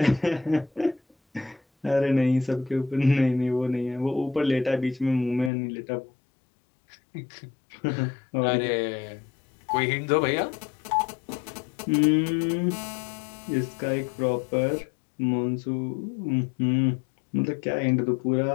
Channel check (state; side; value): drops out; right; at 5.5 s